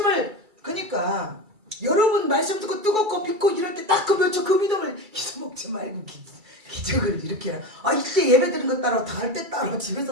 그러니까 여러분 말씀 듣고 뜨겁고 믿고 이럴 때 딱 그 몇 초 그 믿음을 잊어먹지 말고 기적을 이렇게 이때 예배 드린 거 따로 다할 때 따로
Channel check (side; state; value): left; late; 2.3 ms